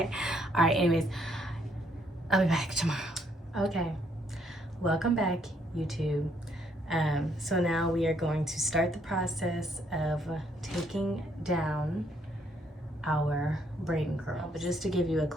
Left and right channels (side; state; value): both; normal; correlation 0.70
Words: All right, anyways, I'll be back tomorrow. Okay, welcome back, YouTube. So now we are going to start the process of taking down our braid and curl. But just to give you a